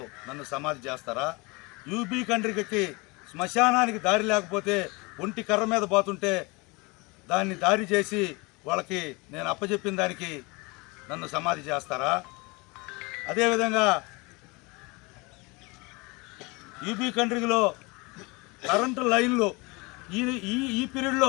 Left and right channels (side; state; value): right; quieter; 26.3 dB